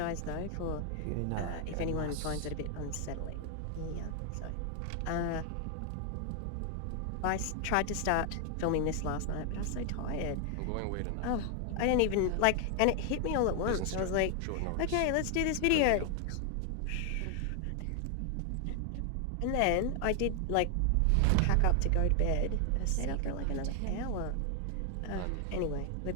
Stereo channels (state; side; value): different; both; correlation 0.00